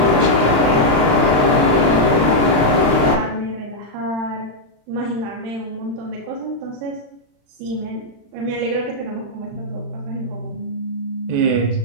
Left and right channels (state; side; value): late; left; 35 ms